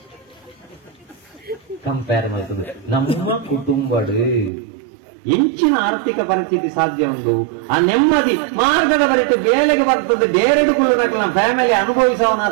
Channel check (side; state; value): left; drops out; at 4.5 s